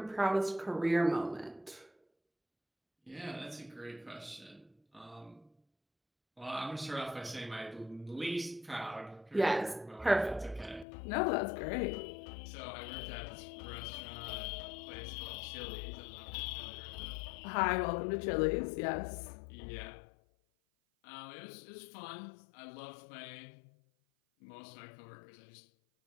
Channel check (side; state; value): right; drops out; at 10.9 s